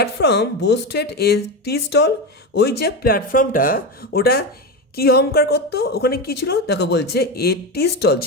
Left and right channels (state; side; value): normal; both; correlation 0.17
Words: boasted a tea stall, ওই যে প্ল্যাটফর্মটা ওটা কি অহংকার করতো? ওখানে কি ছিল? দেখো বলছে এ টি স্টল